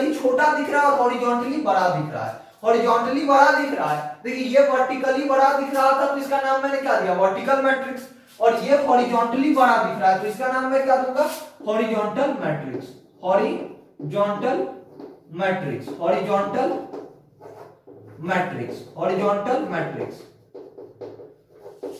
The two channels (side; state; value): both; identical; correlation 1.00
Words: छोटा दिख रहा है और हॉरिजॉन्टली बड़ा दिख रहा है। हॉरिजॉन्टली बड़ा दिख रहा है, देखिए ये वर्टिकली बड़ा दिख रहा था तो इसका नाम मैंने क्या दिया? Vertical matrix. और ये हॉरिजॉन्टली बड़ा दिख रहा है तो इसका नाम मैं क्या दूंगा? Horizontal matrix. Horizontal matrix, horizontal matrix, horizontal matrix.